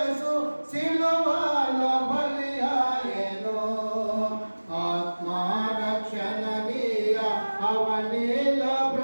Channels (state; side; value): inverted; both; correlation -1.00